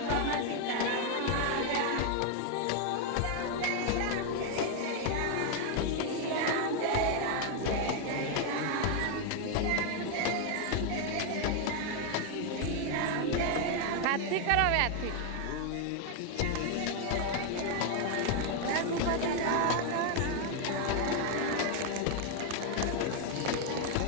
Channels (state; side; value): different; both; correlation 0.01